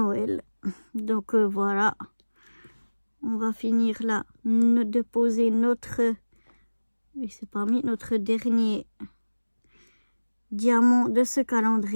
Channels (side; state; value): both; inverted; correlation -1.00